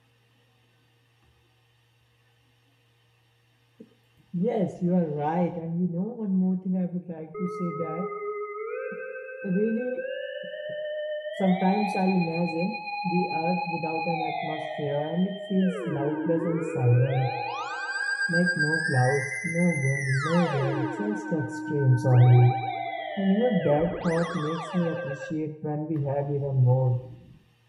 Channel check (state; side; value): identical; both; correlation 1.00